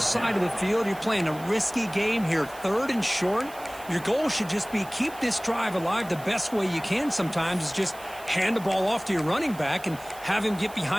of the field, you're playing a risky game here, 3rd and short. Your goal should just be keep this drive alive the best way you can sometimes is just hand the ball off to your running back and have him get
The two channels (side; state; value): right; noise; hiss, 19 dB below the sound